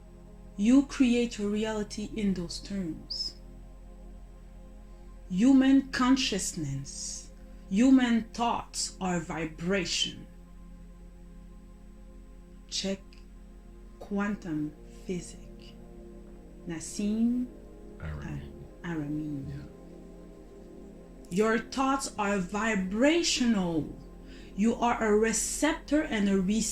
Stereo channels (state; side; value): identical; both; correlation 1.00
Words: You create your reality in those terms. Human consciousness, human thoughts are vibration. Check quantum physics. Nassim Aramein. Yeah. Your thoughts are vibrational. You are a receptor and a